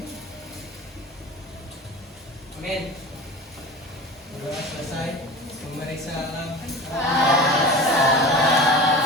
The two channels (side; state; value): both; normal; correlation 0.33